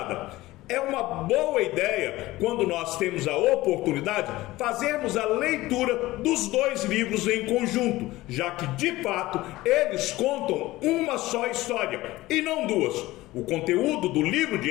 é uma boa ideia, quando nós temos a oportunidade, fazermos a leitura dos dois livros em conjunto, já que, de fato, eles contam uma só história e não duas. O conteúdo do livro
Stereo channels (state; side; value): quieter; right; 18.1 dB